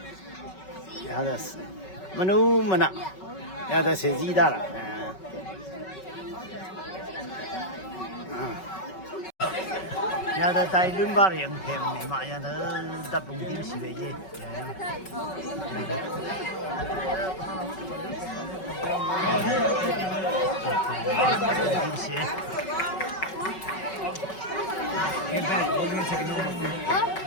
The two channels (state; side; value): late; right; 5.3 ms